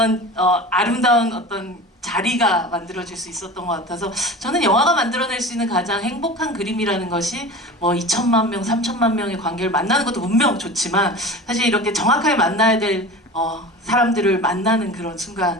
아름다운 어떤 자리가 만들어질 수 있었던 것 같아서 저는 영화가 만들어낼 수 있는 가장 행복한 그림이라는 것이 뭐 2천만 명, 3천만 명의 관객을 만나는 것도 분명 좋지만 사실 이렇게 정확하게 만나야 될 사람들을 만나는 그런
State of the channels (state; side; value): normal; both; correlation 0.34